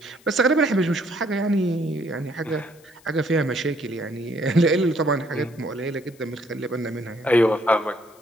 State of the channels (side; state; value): left; noise; hiss, 28 dB below the sound